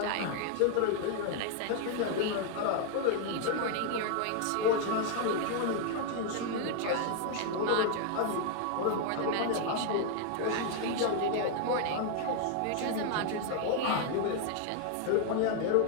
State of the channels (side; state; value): both; different; correlation 0.00